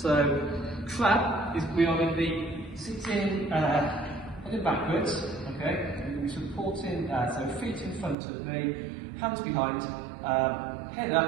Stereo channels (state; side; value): drops out; left; at 8.2 s